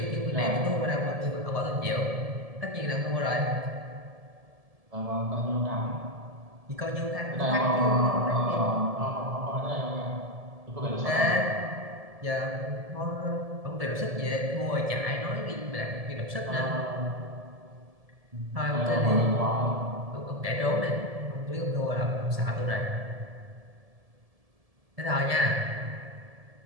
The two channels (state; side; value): late; left; 1.7 ms